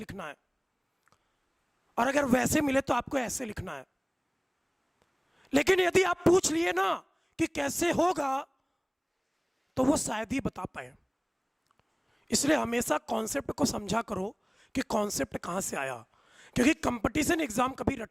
है, और अगर वैसे मिले तो आपको ऐसे लिखना है। लेकिन यदि आप पूछ लिए ना कि कैसे होगा तो वो शायद ही बता पाए। इसलिए हमेशा कॉन्सेप्ट को समझा करो कि कॉन्सेप्ट कहां से आया, क्योंकि कंपटीशन एग्जाम कभी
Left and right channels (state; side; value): identical; both; correlation 1.00